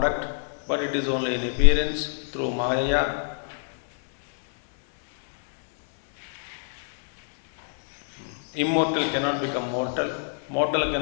but it is only in appearance through Maya. Immortal cannot become mortal, mortal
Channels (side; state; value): right; silent; digital silence